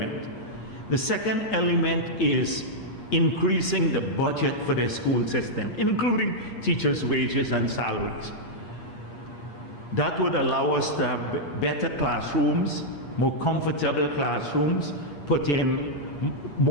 The second element is increasing the budget for the school system, including teachers' wages and salaries. That would allow us to have better classrooms, more comfortable classrooms,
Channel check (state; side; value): late; right; 8.5 ms